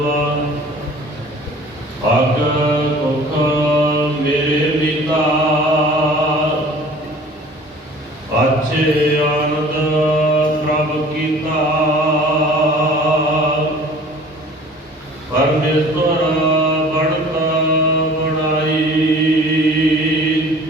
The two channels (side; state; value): both; normal; correlation 0.47